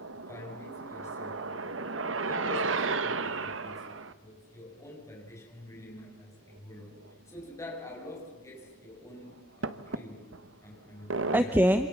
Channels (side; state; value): both; normal; correlation 0.41